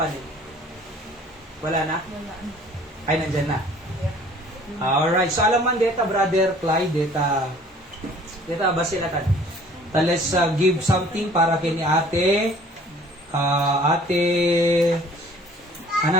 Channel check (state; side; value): normal; both; correlation 0.53